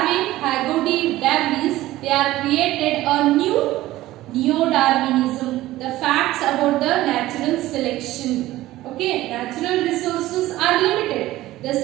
Haggerty, De Vries, they are created a new Neo-Darwinism, the facts about the natural selection. Okay, natural resources are limited. The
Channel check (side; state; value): left; quieter; 16.2 dB